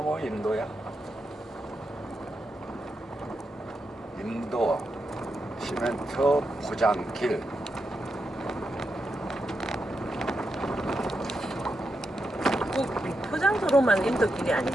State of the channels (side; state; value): both; normal; correlation 0.85